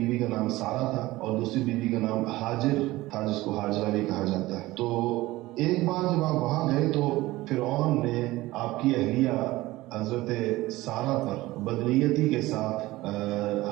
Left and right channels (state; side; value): quieter; left; 18.4 dB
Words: کا نام سارہ تھا اور دوسری بیوی کا نام ہاجر تھا جس کو حاجرہ بھی کہا جاتا ہے۔ تو ایک بار جب آپ وہاں گئے تو فرعون نے آپ کی اہلیہ حضرت سارہ پر بدنیتی کے ساتھ